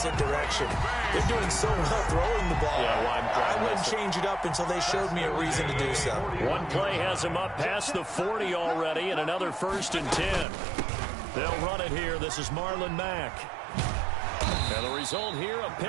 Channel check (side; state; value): left; drops out; at 10.5 s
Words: direction. They're doing so well throwing the ball. I wouldn't change it up until they showed me a reason to do so. One play has them up past the 40 already, and another 1st and 10. They'll run it here. This is Marlon Mack. And the result here, a